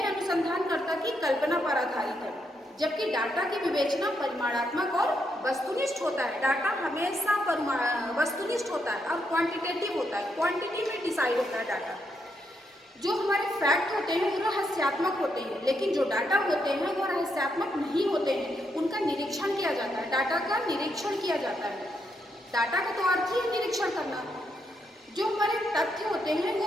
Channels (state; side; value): normal; both; correlation 0.79